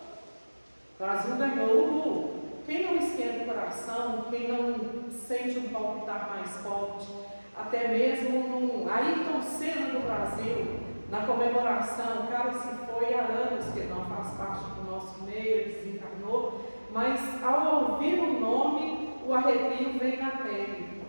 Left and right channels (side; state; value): both; inverted; correlation -1.00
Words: o Brasil ganhou. Quem não esquenta o coração, quem não sente um palpitar mais forte, até mesmo no Ayrton Senna do Brasil, na comemoração, o cara se foi há anos, que ele não faz parte do nosso meio, ele desencarnou, mas ao ouvir o nome, o arrepio vem na pele.